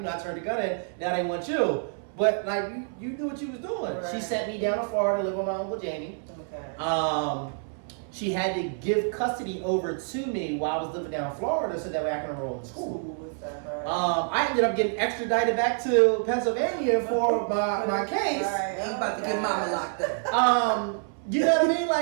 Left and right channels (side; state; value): left; silent; 60 dB below the other